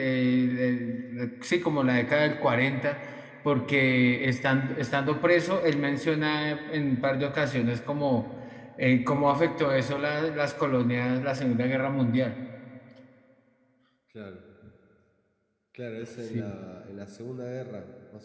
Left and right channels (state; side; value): identical; both; correlation 1.00